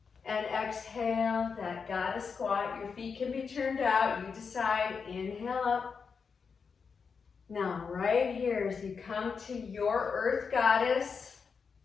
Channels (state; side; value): quieter; right; 5.7 dB